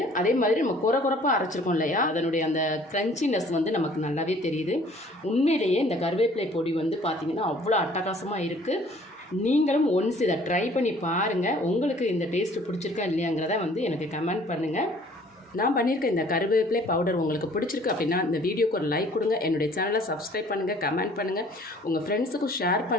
அதே மாதிரி நம்ம குறப்பாக அரைச்சிருக்கோம் இல்லையா, அதனுடைய அந்த க்ரன்ச்சினஸ் வந்து நமக்கு நல்லாவே தெரியுது. உண்மையிலேயே இந்த கருவேப்பிலை பொடி வந்து பார்த்திங்கன்னா அவ்வளோ அட்டகாசமாக இருக்குது. நீங்களும் ஒன்ஸ் இதை ட்ரை பண்ணி பாருங்கள். உங்களுக்கு இந்த டேஸ்ட்டு பிடிச்சிருக்கா இல்லையாங்கிறத வந்து எனக்கு கமெண்ட் பண்ணுங்கள். நான் பண்ணியிருக்க இந்த கருவேப்பிலை பவுடர் உங்களுக்கு பிடிச்சிருக்கு அப்படின்னா இந்த வீடியோக்கு ஒரு லைக் கொடுங்க. என்னுடைய சேனலை சப்ஸ்கிரைப் பண்ணுங்கள், கமெண்ட் பண்ணுங்கள், உங்கள் ஃப்ரெண்ட்ஸுக்கும் ஷேர்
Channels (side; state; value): both; normal; correlation 0.55